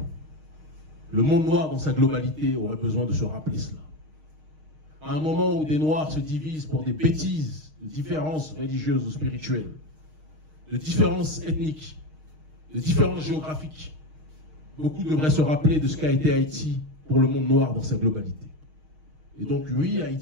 Le monde noir dans sa globalité aurait besoin de se rappeler cela. À un moment où des Noirs se divisent pour des bêtises de différences religieuses ou spirituelles, de différences ethniques, de différences géographiques, beaucoup devraient se rappeler de ce qu'a été Haïti pour le monde noir dans sa globalité. Et donc oui,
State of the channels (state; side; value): late; left; 6.4 ms